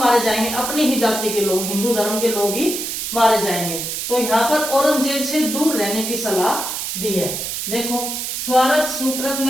जाएंगे? अपनी ही जाति के लोग, हिंदू धर्म के लोग ही मारे जाएंगे। तो यहाँ पर औरंगजेब से दूर रहने की सलाह दी है। देखो, स्वार्थ सुकृत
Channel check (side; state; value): right; noise; hiss, 4 dB below the sound